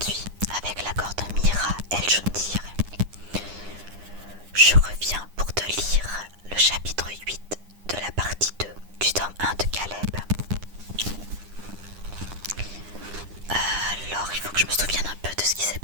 avec l'accord de Mira El Joundir, je reviens pour te lire le chapitre 8 de la partie 2 du tome 1 de Caleb. Alors, il faut que je me souvienne un peu de ce qui s'est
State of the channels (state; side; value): late; left; 9.9 ms